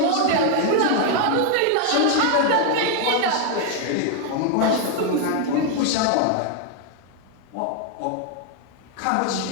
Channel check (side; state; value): both; different; correlation 0.01